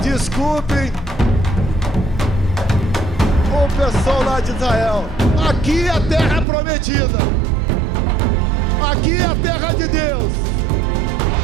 Desculpem o pessoal lá de Israel. Aqui é a terra prometida. Aqui é a terra de Deus.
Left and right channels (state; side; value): drops out; left; at 6.5 s